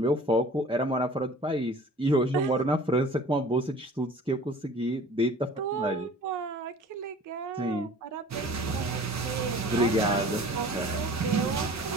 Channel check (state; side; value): normal; both; correlation 0.46